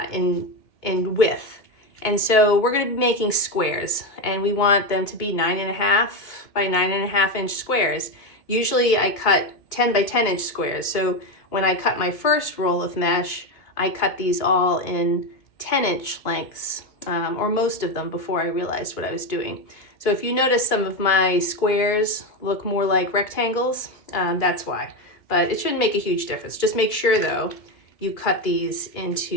in width. And so we're going to be making squares, and we want them to be 9.5 by 9.5 inch squares. Usually I cut 10 by 10 inch squares. So when I cut my first roll of mesh, I cut these all in 10-inch lengths, or most of them before I realized what I was doing. So if you notice some of my squares look more like rectangles, that's why. But it shouldn't make a huge difference. Just make sure though, you cut these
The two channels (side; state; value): right; late; 2.3 ms